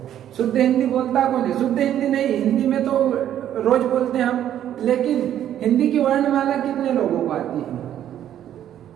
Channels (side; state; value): left; quieter; 11.0 dB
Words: शुद्ध हिंदी बोलता कौन है? शुद्ध हिंदी नहीं, हिंदी में तो रोज बोलते हैं हम, लेकिन हिंदी की वर्णमाला कितने लोगों को आती है?